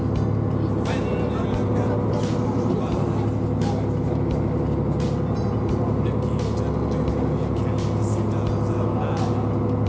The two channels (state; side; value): identical; both; correlation 1.00